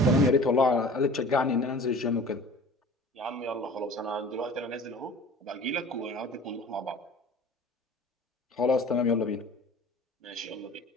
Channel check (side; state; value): both; normal; correlation 0.44